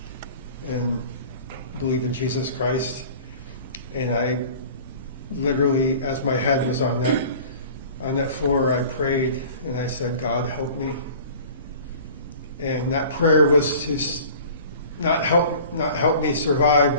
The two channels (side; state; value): both; inverted; correlation -0.44